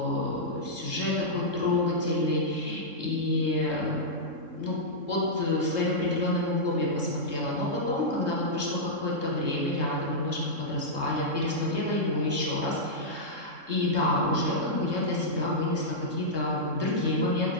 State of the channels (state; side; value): late; left; 3.7 ms